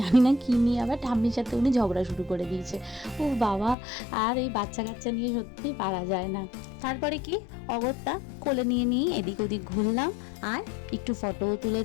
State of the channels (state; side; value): drops out; right; at 3.8 s